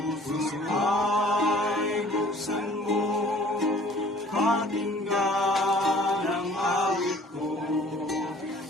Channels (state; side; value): normal; both; correlation 0.52